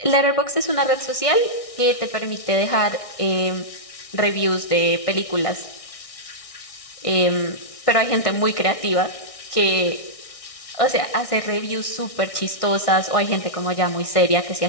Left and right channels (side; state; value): right; late; 1.6 ms